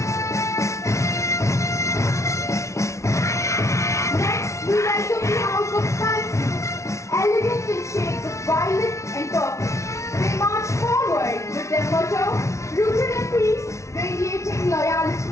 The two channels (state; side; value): late; right; 0.14 ms